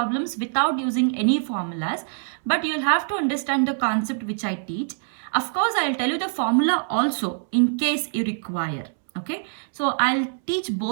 without using any formulas. But you'll have to understand the concept which I teach. Of course, I'll tell you the formula also in case you require. Okay, so I'll teach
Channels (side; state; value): left; silent; 62 dB below the other